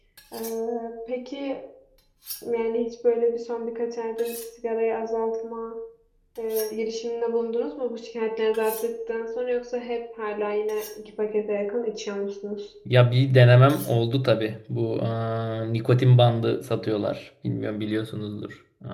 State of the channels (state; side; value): identical; both; correlation 1.00